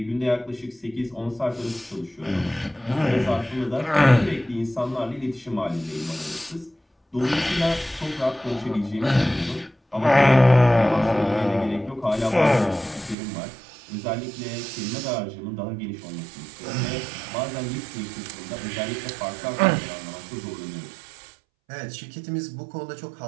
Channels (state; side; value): drops out; left; at 13.2 s